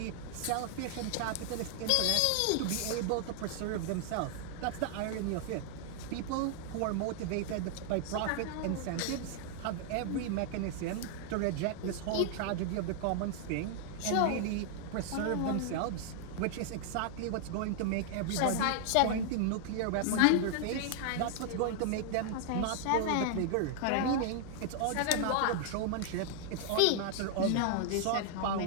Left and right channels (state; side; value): different; both; correlation 0.00